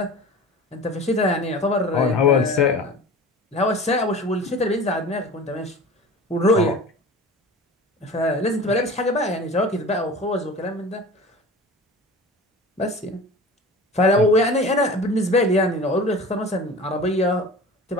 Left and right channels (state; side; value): normal; both; correlation 0.38